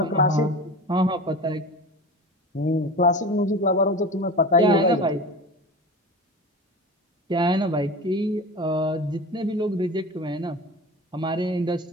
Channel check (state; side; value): normal; both; correlation 0.32